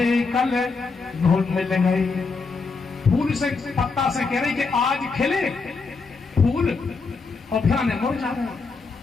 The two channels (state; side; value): quieter; right; 4.4 dB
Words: कल धूल मिल गए। फूल से पत्ता से कह रही कि आज खिले फूल और फिर मुरझा गए,